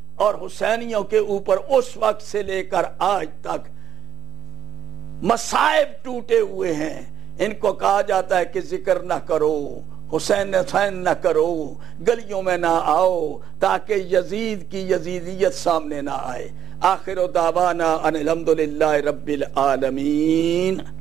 اور حسینیوں کے اوپر اس وقت سے لے کر آج تک مصائب ٹوٹے ہوئے ہیں. ان کو کہا جاتا ہے کہ ذکر نہ کرو، حسین نہ کرو، گلیوں میں نہ آؤ، تاکہ یزید کی یزیدیت سامنے نہ آئے. آخر دعوانا ان الحمدللہ رب العالمین.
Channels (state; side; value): quieter; left; 10.2 dB